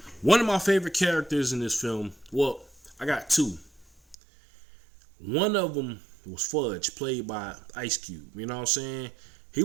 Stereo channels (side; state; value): left; drops out; at 4.2 s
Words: one of my favorite characters in this film, well, I got 2. One of them was Fudge, played by Ice Cube. You know what I'm saying? He